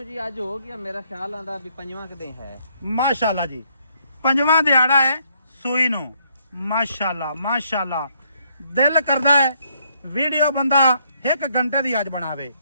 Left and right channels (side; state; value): both; inverted; correlation -0.70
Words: ਜੀ ਅੱਜ ਹੋ ਗਿਆ ਮੇਰਾ ਖਿਆਲ ਆਂਦਾ ਵੀ ਪੰਜਵਾਂ ਕਦੇ ਹੈ। ਮਾਸ਼ਾਅੱਲਾ ਜੀ ਪੰਜਵਾਂ ਦਿਹਾੜਾ ਹੈ ਸੂਈ ਨੂੰ। ਮਾਸ਼ਾਅੱਲਾ ਮਾਸ਼ਾਅੱਲਾ ਦਿਲ ਕਰਦਾ ਹੈ ਵੀਡੀਓ ਬੰਦਾ 1 ਘੰਟੇ ਦੀ ਅੱਜ ਬਣਾਵੇ।